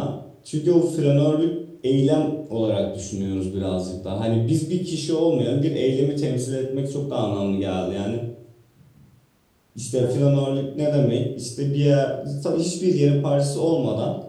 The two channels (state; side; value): identical; both; correlation 1.00